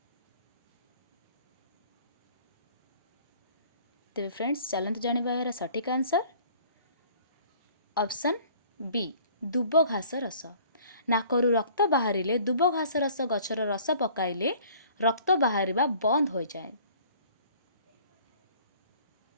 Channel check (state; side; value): inverted; both; correlation -0.53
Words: तेरे फ्रेंड्स चलते जानिबा यार सटीक आंसर ऑप्शन बी दुब घास रस। नाकरू रक्त बाहरिले दुब घास रस गछर रस पकाइले रक्त बाहरिबा बंद हो जाए।